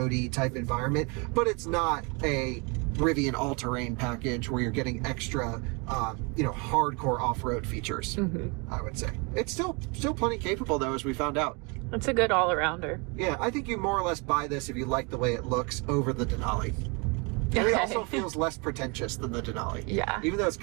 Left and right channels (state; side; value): quieter; left; 31.0 dB